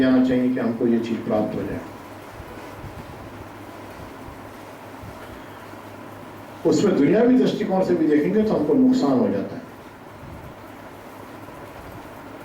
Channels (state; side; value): identical; both; correlation 1.00